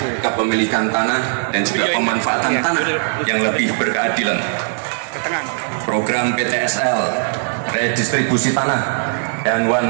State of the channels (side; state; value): left; silent; digital silence